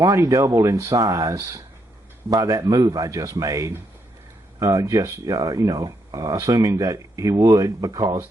doubled in size by that move I just made, assuming that he would because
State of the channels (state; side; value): normal; both; correlation 0.78